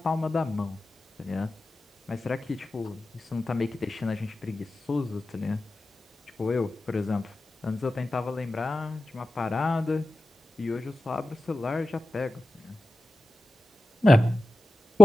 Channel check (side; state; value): both; normal; correlation 0.93